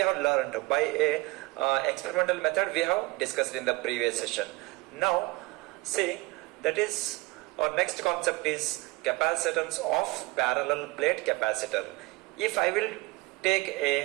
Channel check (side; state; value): left; quieter; 23.3 dB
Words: have learned by a experimental method we have discussed in the previous session. Now, see, that is our next concept is capacitance of parallel plate capacitor. If I will take